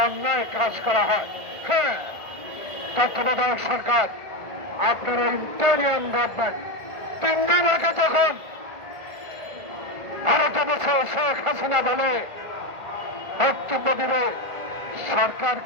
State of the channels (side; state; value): left; late; 1.5 ms